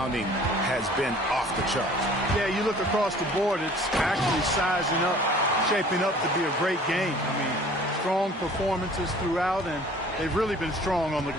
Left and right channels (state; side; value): normal; both; correlation 0.50